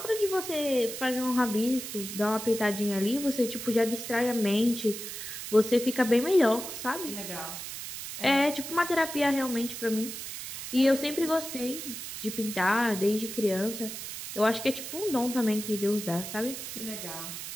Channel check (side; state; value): right; noise; hiss, 8 dB below the sound